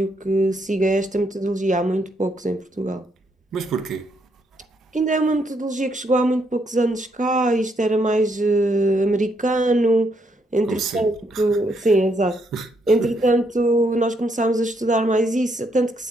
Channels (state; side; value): normal; both; correlation 0.75